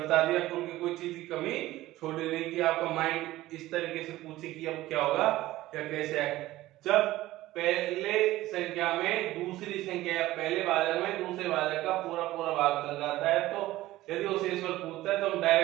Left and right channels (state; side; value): quieter; left; 16.5 dB